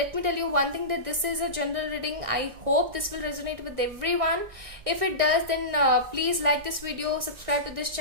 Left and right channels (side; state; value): left; late; 1.6 ms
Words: me tell you one thing, that this is a general reading. I hope this will resonate with everyone. If it does, then please like this video, subscribe to this